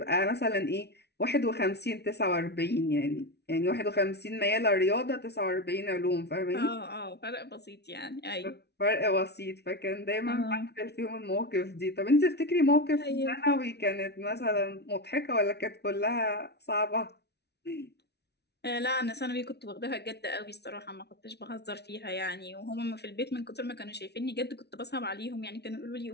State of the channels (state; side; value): late; right; 0.49 ms